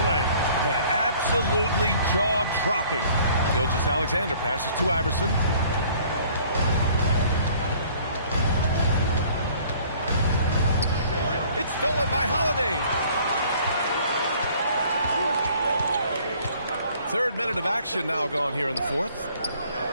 play. And absolutely jaw-dropping. Gilgeous-Alexander passes to Iverson. It's stolen by Holiday. 3rd minute of action now gone here in the 4th.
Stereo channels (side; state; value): both; inverted; correlation -0.55